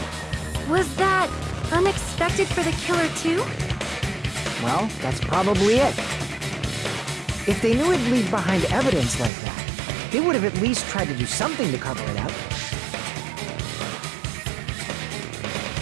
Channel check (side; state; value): left; drops out; at 9.3 s